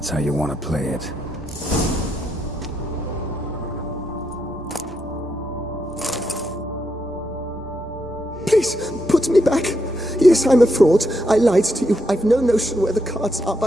how you want to play it. Please, put me back. Yes, I'm a fraud. I lied to you. I've no notion where the cards are,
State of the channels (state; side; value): normal; both; correlation 0.80